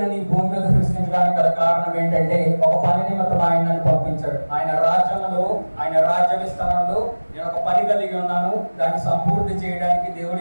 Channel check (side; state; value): both; inverted; correlation -1.00